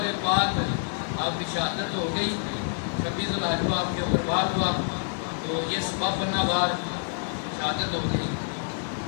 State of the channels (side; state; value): right; silent; 59 dB below the other